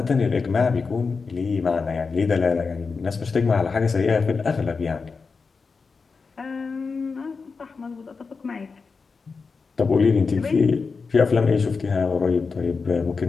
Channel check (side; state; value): right; quieter; 4.8 dB